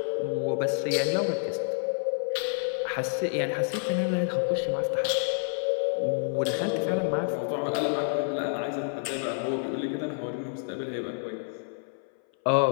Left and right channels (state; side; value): silent; right; 58 dB below the other